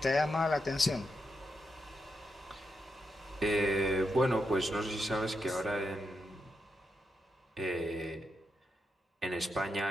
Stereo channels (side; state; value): both; normal; correlation 0.84